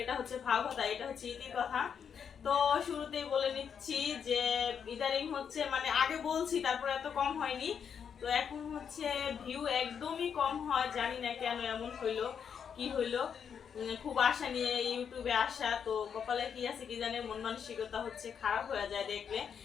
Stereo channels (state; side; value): quieter; right; 7.4 dB